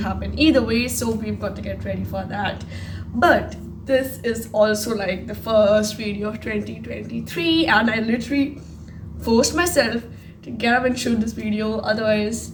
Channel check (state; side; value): identical; both; correlation 1.00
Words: either way, so we've got to get ready for that. But this is also like the first video of 2023, and I literally forced myself to get up and shoot this video, otherwise